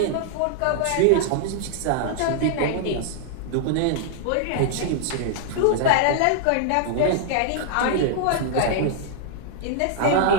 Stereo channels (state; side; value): different; both; correlation -0.01